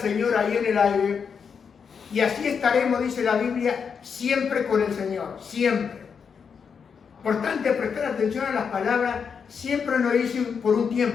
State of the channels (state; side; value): quieter; right; 6.4 dB